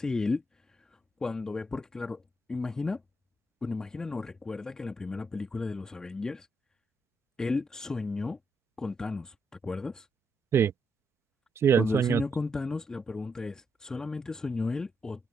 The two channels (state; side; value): normal; both; correlation 0.80